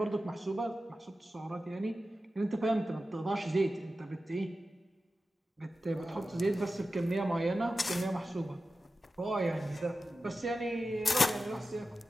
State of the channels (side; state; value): both; normal; correlation 0.93